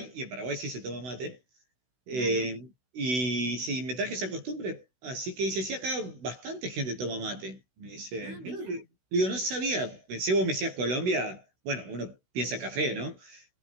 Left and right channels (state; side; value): late; left; 16 ms